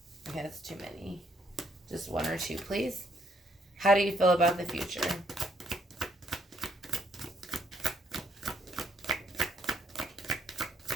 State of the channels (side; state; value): both; normal; correlation 0.69